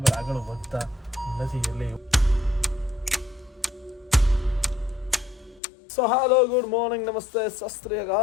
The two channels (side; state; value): right; drops out; at 5.6 s